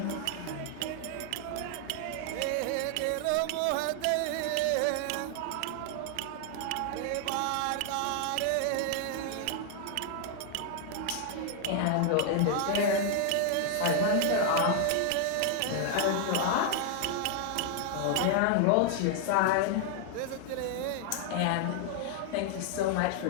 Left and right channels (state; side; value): different; both; correlation 0.00